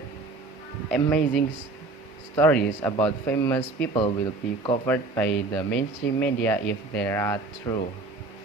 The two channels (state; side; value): quieter; left; 3.4 dB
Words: amazing stories about famous people will be covered by the mainstream media if they are true.